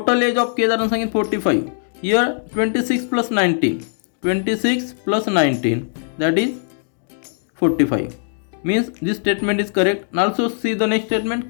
age of Kedar and Sanket 45. Here 26 plus 19. 26 plus 19, that is 45. Means this statement is correct. And also see the next statement,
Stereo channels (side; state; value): right; silent; digital silence